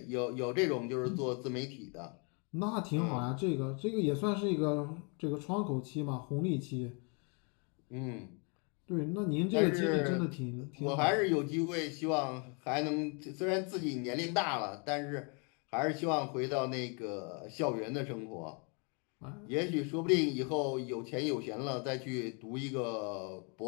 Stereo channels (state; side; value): quieter; right; 35.7 dB